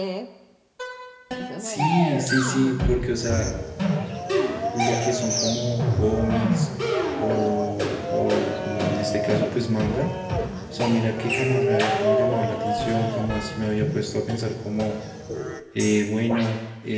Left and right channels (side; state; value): both; identical; correlation 1.00